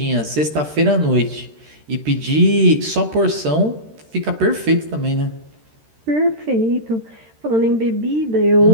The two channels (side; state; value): left; late; 13 ms